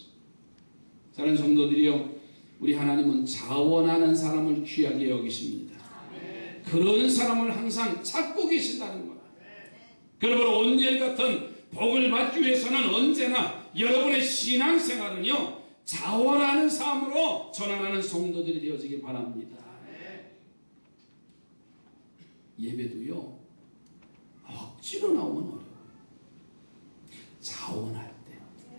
사랑하는 성도들이요, 우리 하나님은 자원하는 사람을 귀하게 여기십니다. 그런 사람을 항상 찾고 계신다는 거다. 그러므로 온니엘 같은 복을 받기 위해서는 언제나 여러분의 신앙생활은요, 자원하는 삶으로 전환하는 성도들이 되어지길 바랍니다. 예배도요, 억지로 나오면 어려워요. 자원할 때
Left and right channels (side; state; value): both; inverted; correlation -1.00